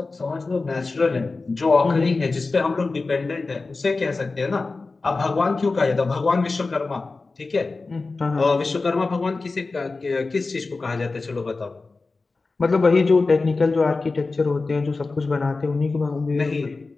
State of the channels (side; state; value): right; quieter; 3.8 dB